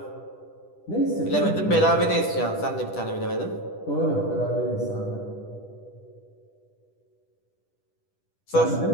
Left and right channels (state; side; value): late; right; 10 ms